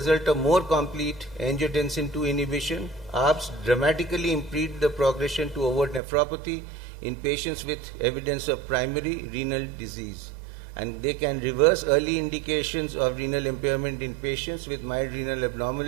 of more complete angiotensin II inhibition, ARBs dramatically impede the progression to overt nephropathy in patients with evidence of primary renal disease. And they can reverse early indications of renal impairment in patients with mild renal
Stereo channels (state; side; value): drops out; left; at 6.0 s